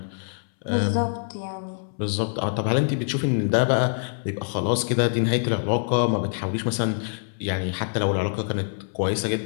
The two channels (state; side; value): silent; right; 62 dB below the other